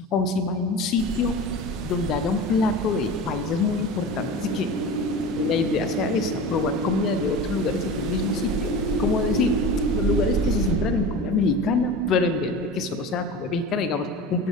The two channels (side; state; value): both; normal; correlation 0.32